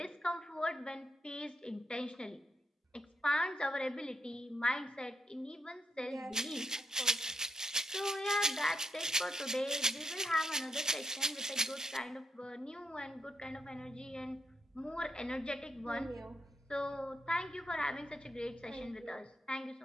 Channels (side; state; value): both; normal; correlation 0.79